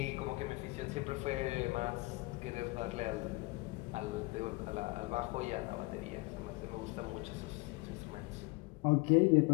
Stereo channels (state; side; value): quieter; right; 24.5 dB